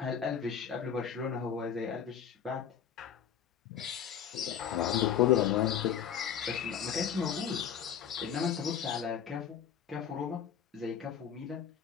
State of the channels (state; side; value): quieter; right; 8.3 dB